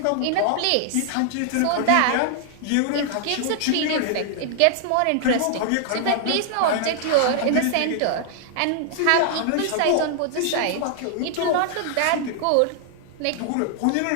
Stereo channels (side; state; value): both; different; correlation 0.00